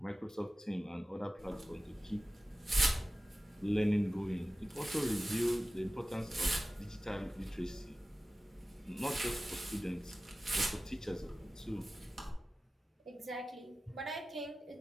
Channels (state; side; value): normal; both; correlation 0.96